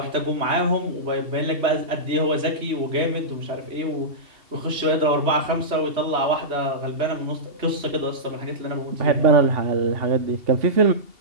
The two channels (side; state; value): left; late; 2.8 ms